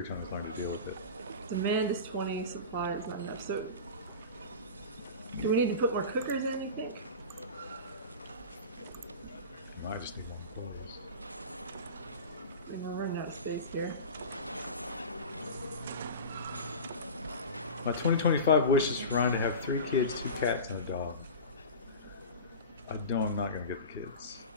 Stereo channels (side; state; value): both; inverted; correlation -0.30